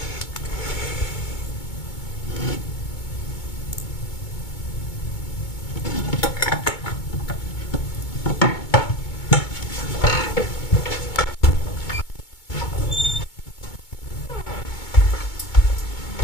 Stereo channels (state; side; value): late; right; 2.2 ms